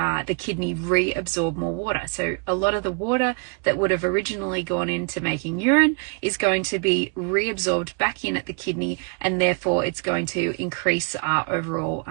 kidney reabsorb more water. So a lot of the water that would have originally gone into making urine is going to be reabsorbed back in at the kidney, and therefore it's going to increase our overall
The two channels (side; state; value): left; quieter; 35.8 dB